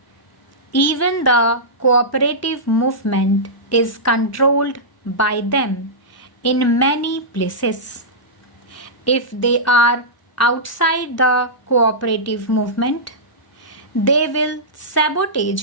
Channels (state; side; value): normal; both; correlation -0.14